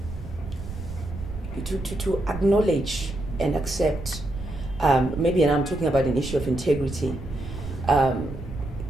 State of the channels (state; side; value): noise; right; rumble, 10 dB below the sound